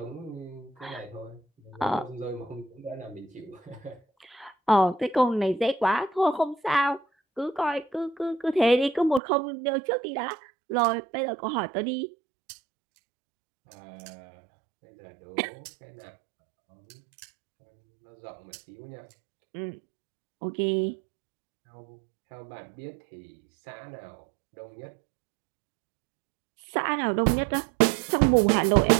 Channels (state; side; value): drops out; left; at 9.2 s